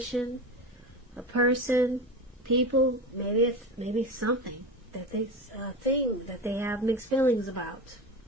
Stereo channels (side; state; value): both; normal; correlation 0.26